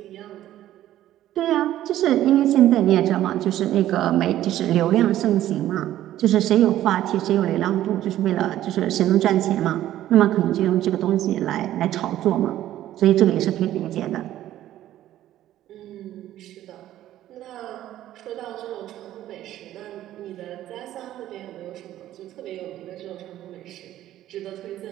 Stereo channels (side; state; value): left; quieter; 13.2 dB